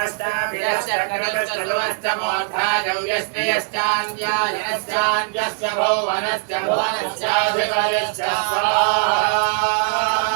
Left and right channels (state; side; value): silent; left; digital silence